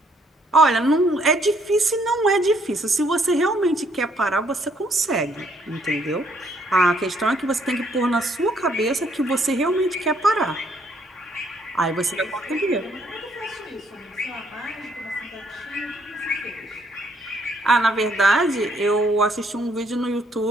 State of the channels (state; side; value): normal; both; correlation 0.68